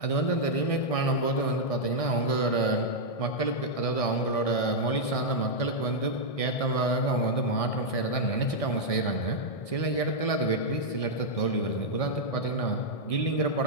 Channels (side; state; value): right; late; 1.6 ms